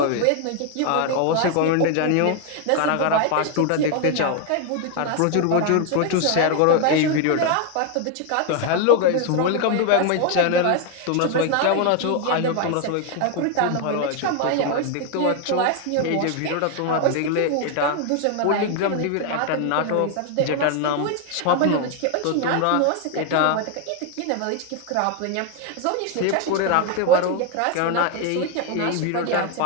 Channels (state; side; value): different; both; correlation 0.01